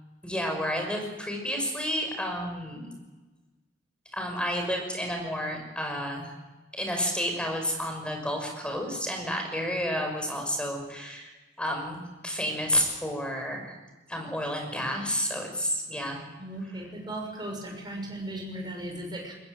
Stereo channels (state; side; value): normal; both; correlation 0.24